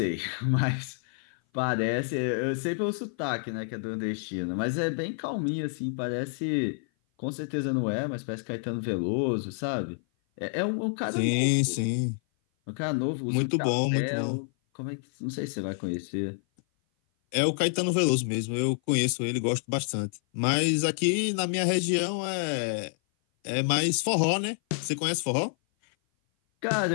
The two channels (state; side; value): silent; right; 56 dB below the other